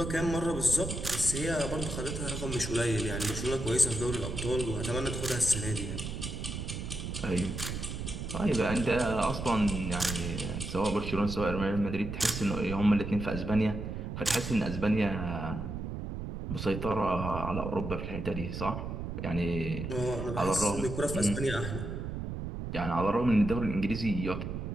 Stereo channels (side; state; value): right; noise; rumble, 5 dB below the sound